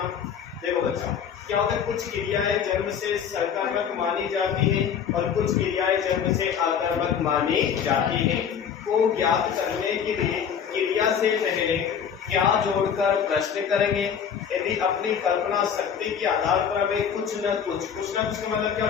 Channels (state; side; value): quieter; right; 7.7 dB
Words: देखो बच्चा, क्या होता है, कुछ क्रियाएं जन्म से सकर्मक मानी जाती हैं और कुछ क्रियाएं जन्म से अकर्मक मानी जाती हैं। को ज्ञात करने के लिए क्रिया से पहले क्या जोड़कर प्रश्न करेंगे। यदि अपनी कल्पना शक्ति के आधार पर हमें कुछ न कुछ का मतलब क्या